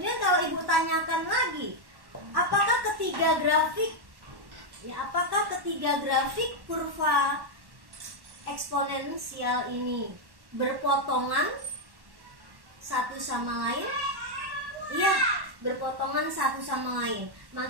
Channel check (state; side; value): late; left; 1.1 ms